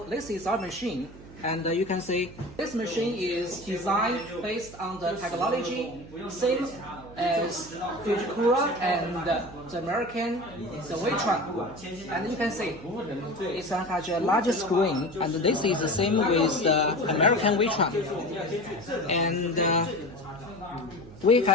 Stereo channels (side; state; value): right; noise; hum, 18 dB below the sound